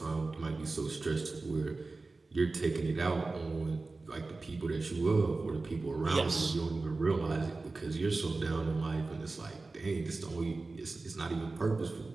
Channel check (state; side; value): quieter; left; 3.6 dB